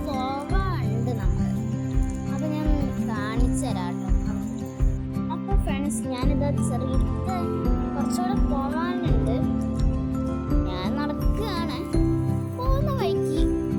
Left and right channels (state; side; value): identical; both; correlation 1.00